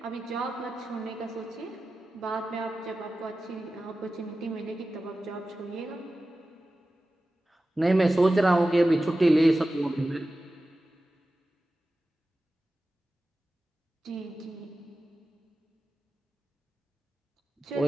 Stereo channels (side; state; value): both; normal; correlation 0.94